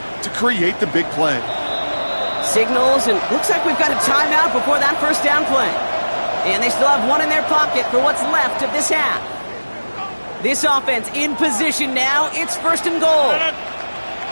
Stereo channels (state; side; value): inverted; both; correlation -1.00